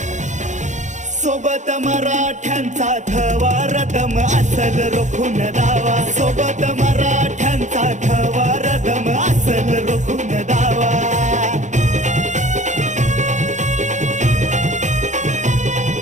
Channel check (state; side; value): late; left; 0.35 ms